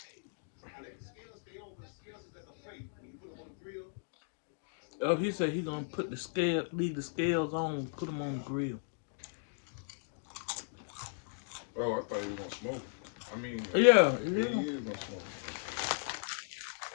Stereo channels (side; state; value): right; silent; digital silence